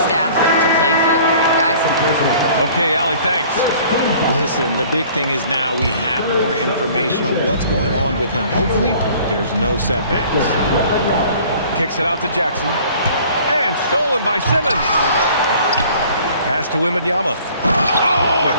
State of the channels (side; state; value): both; inverted; correlation -0.51